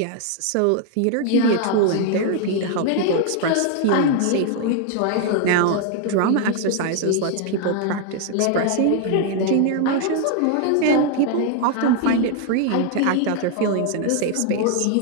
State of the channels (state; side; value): different; both; correlation 0.00